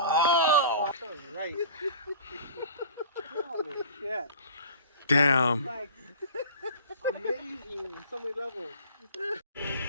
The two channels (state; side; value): inverted; both; correlation -0.41